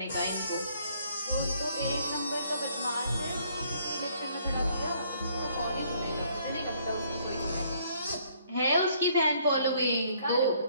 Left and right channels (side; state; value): both; inverted; correlation -0.64